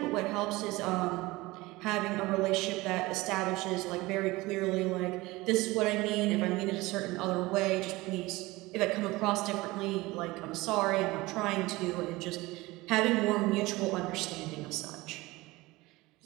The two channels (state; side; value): quieter; left; 20.7 dB